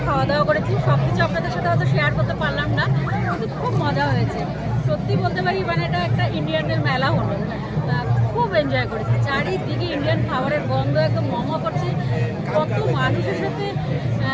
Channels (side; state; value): both; identical; correlation 1.00